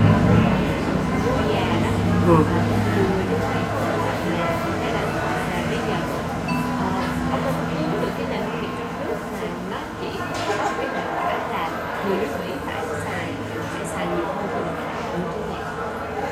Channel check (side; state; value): both; identical; correlation 1.00